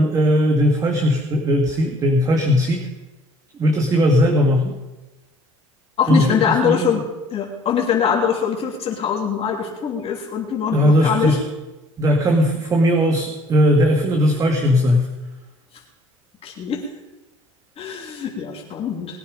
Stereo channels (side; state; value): both; normal; correlation 0.59